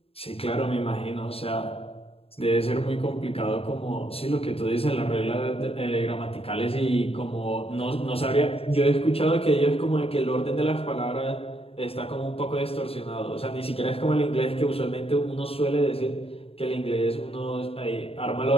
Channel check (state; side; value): late; right; 0.28 ms